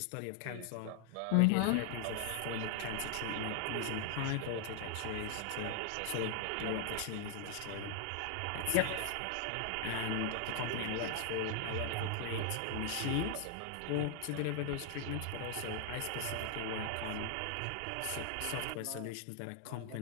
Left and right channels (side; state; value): both; different; correlation 0.00